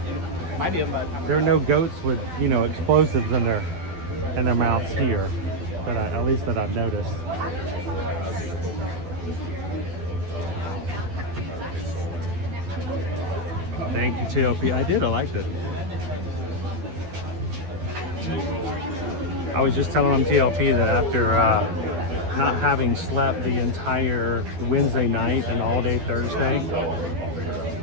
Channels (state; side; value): late; left; 12 ms